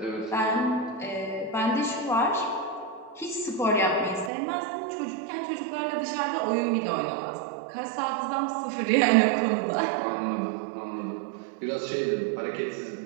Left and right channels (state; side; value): drops out; left; at 4.3 s